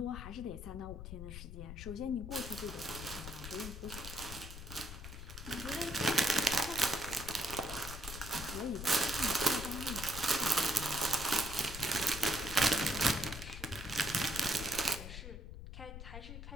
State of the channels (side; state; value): left; noise; rumble, 9 dB below the sound